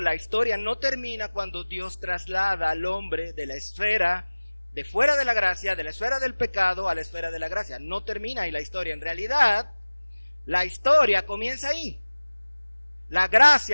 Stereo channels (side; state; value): both; inverted; correlation -1.00